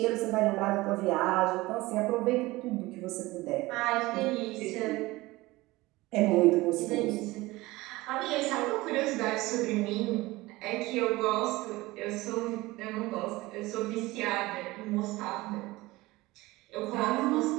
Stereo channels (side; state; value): left; quieter; 20.0 dB